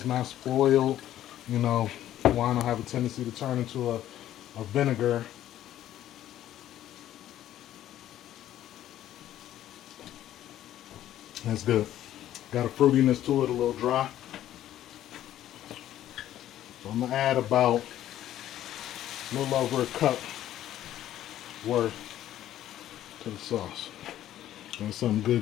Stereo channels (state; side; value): quieter; right; 12.5 dB